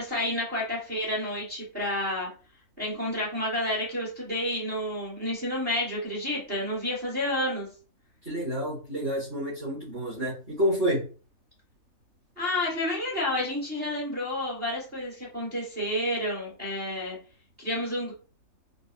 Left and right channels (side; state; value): left; late; 3.3 ms